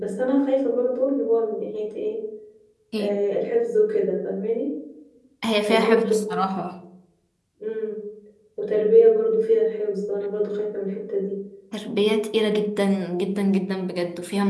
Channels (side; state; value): both; identical; correlation 1.00